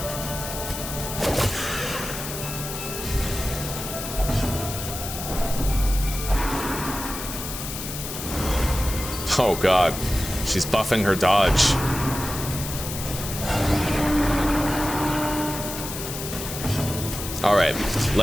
Oh god. She's buffing her dodge. Alright,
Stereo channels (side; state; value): left; noise; hiss, 7 dB below the sound